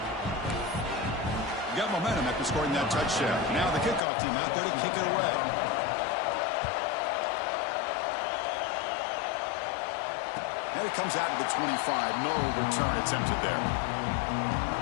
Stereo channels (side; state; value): right; drops out; at 4.0 s